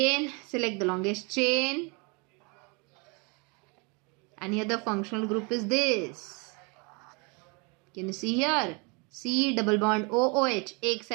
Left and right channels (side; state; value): left; quieter; 31.4 dB